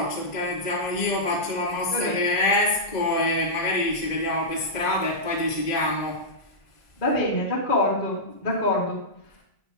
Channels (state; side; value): late; right; 2.0 ms